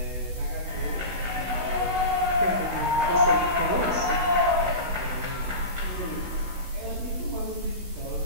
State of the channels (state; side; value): late; left; 16 ms